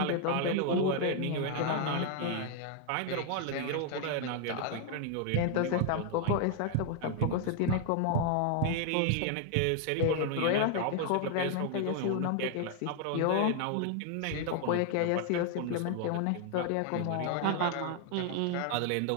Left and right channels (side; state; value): both; different; correlation 0.00